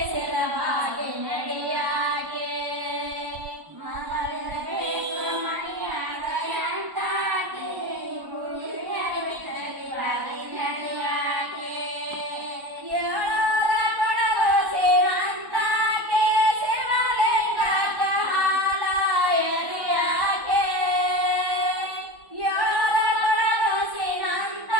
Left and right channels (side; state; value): left; late; 1.1 ms